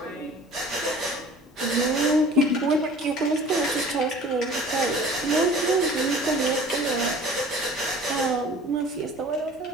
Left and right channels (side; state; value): both; normal; correlation 0.46